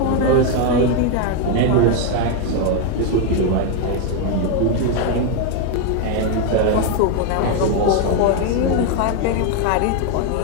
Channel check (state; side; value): different; both; correlation 0.01